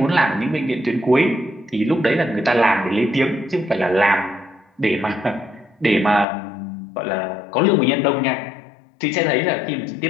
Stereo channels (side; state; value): right; drops out; at 6.2 s